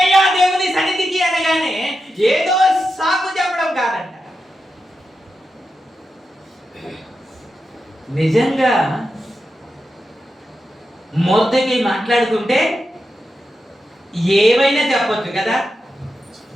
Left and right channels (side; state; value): both; normal; correlation 0.88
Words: దేవుని సన్నిధికి అనగానే ఏదో సాకు చెప్పడం కాదంట. నిజంగా మొదటి మాట్లాడుతుంటే ఏమైనా చెప్పొచ్చు కదా.